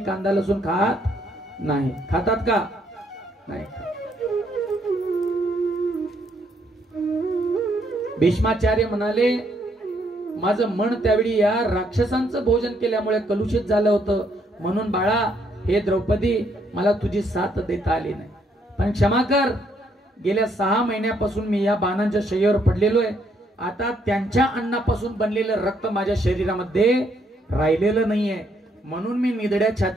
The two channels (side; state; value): both; normal; correlation 0.71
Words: कांदा लसूण खात नाही. खातात का? नाही. भीष्माचार्य म्हणाले, माझं मन त्यावेळी या राक्षसांचं भोजन केल्यामुळे कलुषित झालं होतं, म्हणून बाळा हे द्रौपदी मला तुझी साथ देता आली नाही, पण क्षमा कर. गेल्या 6 महिन्यापासून मी या बाणांच्या शय्येवर पडलेलो आहे. आता त्यांच्या अन्नापासून बनलेलं रक्त माझ्या शरीरामध्ये राहिलेलं नाहीये, म्हणून मी निधड्या